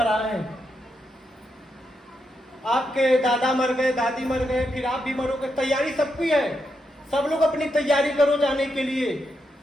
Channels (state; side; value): normal; both; correlation 0.83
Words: हैं। आपके दादा मर गए, दादी मर गए, फिर आप भी मरोगे। तैयारी सबकी है। सब लोग अपनी तैयारी करो जाने के लिए,